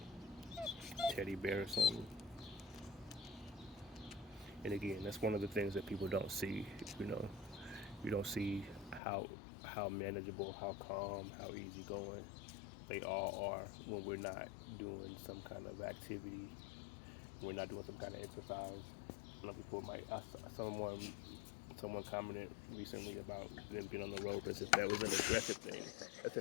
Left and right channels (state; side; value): drops out; right; at 9.0 s